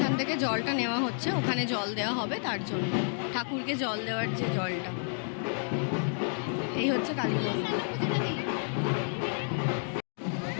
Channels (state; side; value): silent; right; 58 dB below the other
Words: থেকে জলটা নেওয়া হচ্ছে, ওখানে জল দেওয়া হবে, তার জন্য ঠাকুরকে জল দেওয়ার যে জলটা। এই হচ্ছে কালী মন্দির।